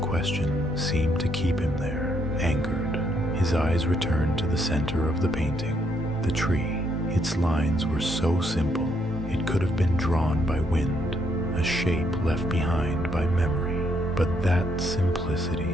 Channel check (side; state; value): both; normal; correlation 0.73